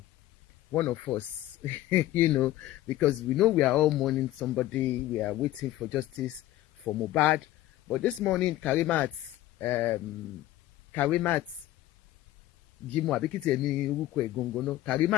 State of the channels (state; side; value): quieter; right; 15.0 dB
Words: one of us, you know, because we know we are all mourning somebody, we are waiting for justice for Mohbad. But this morning, Karimat Jimo Abikiti Emi Uruko Egongono,